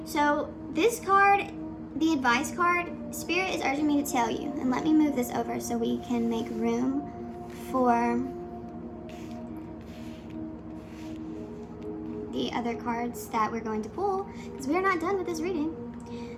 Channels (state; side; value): identical; both; correlation 1.00